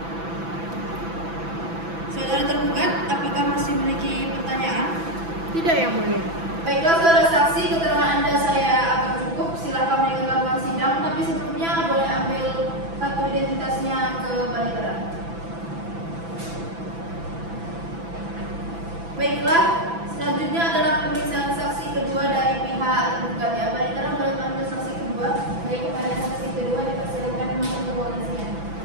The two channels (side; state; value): left; late; 6.0 ms